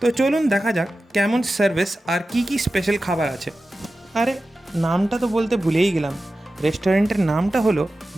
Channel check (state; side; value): normal; both; correlation 0.94